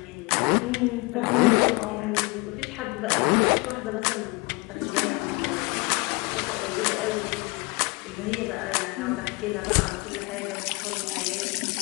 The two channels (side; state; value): right; quieter; 26.8 dB